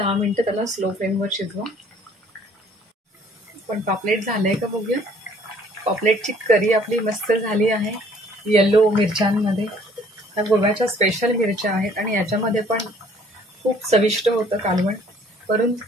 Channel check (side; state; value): both; normal; correlation 0.58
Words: मिनिटं त्याला स्लो फ्लेमवर शिजवा. पण पापलेट झालंय का बघूया. पापलेटची करी आपली मस्त झाली आहे येलो मिरच्यांमध्ये. ह्या गोव्याच्या स्पेशल मिरच्या आहेत आणि याच्यामध्ये पण खूप चविष्ट होतं कालवण. वरून